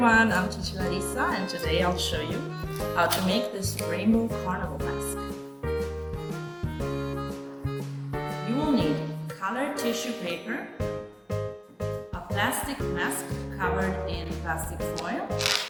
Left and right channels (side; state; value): both; identical; correlation 1.00